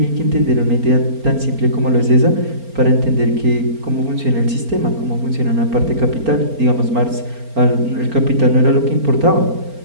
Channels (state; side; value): late; left; 4.4 ms